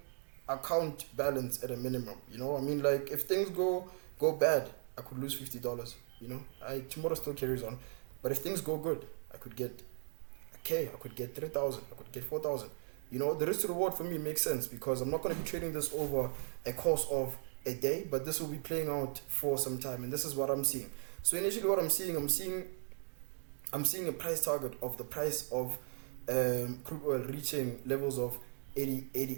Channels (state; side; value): silent; left; 53 dB below the other